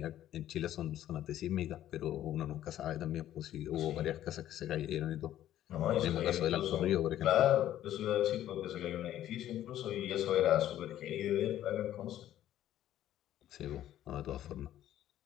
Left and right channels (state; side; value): quieter; right; 12.4 dB